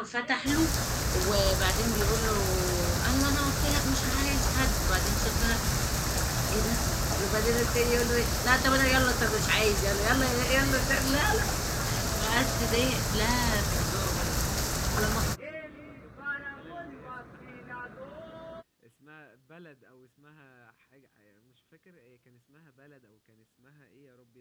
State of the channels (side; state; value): both; identical; correlation 1.00